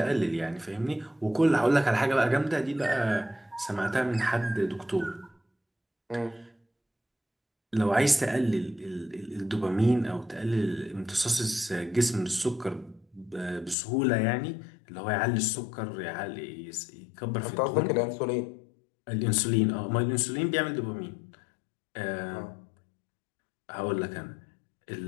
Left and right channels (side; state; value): right; drops out; at 13.8 s